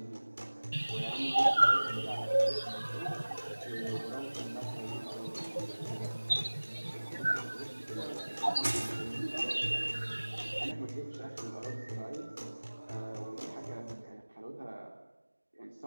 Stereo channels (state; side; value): inverted; both; correlation -1.00